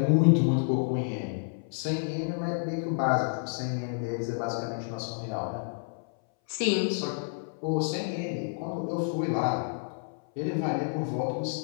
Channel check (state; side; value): silent; right; 58 dB below the other